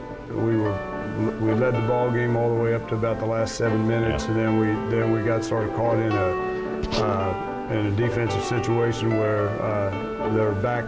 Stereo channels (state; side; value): identical; both; correlation 1.00